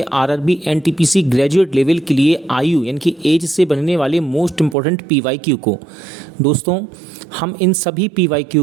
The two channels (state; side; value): drops out; left; at 4.8 s